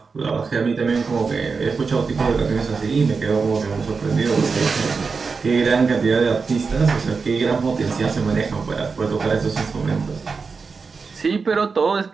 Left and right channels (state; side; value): quieter; left; 4.9 dB